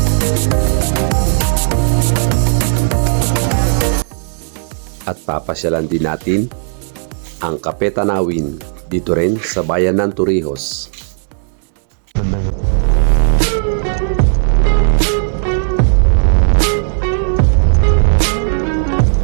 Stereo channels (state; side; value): silent; left; digital silence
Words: At papasyalan din natin ang Cape Tanawin dito rin sa bayan ng Torrijos.